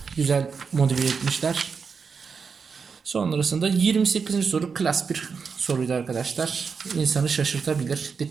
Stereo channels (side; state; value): left; quieter; 5.6 dB